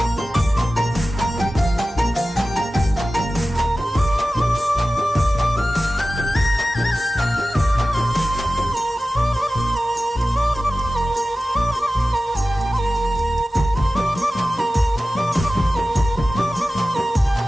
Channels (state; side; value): normal; both; correlation 0.95